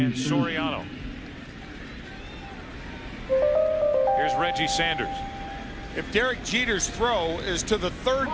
Soriano. Here's Reggie Sanders. If Derek Jeter's throw is to the third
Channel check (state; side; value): identical; both; correlation 1.00